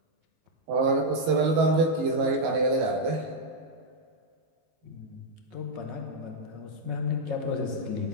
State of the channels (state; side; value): late; left; 19 ms